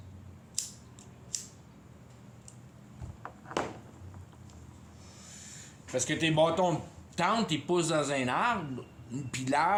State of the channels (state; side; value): identical; both; correlation 1.00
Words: Parce que tes bâtons de tente, ils poussent dans un arbre, puis